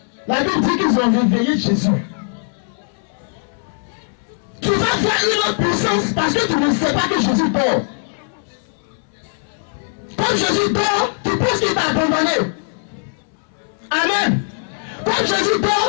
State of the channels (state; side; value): silent; right; 66 dB below the other